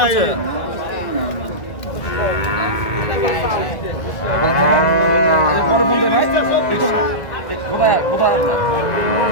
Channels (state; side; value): late; right; 1.5 ms